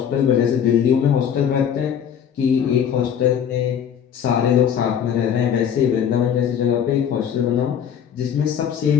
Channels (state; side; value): quieter; right; 8.5 dB